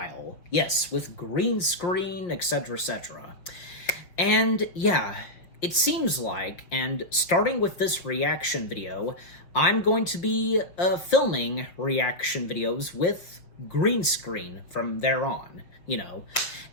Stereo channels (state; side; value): late; right; 5.7 ms